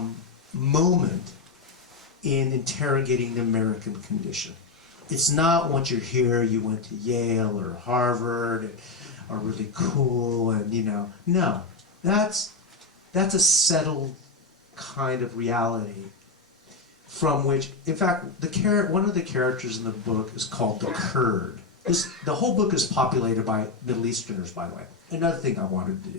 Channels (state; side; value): quieter; right; 4.1 dB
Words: moment in interrogating the American condition. It's not once you're here, you went to Yale or Harvard and are really cool and, you know, no. That's a settled kind of reality from which, in fact, one of the characters in the book is called the Kurd. The whole book is populated by Middle Easterners, by the way. Another thing I wanted to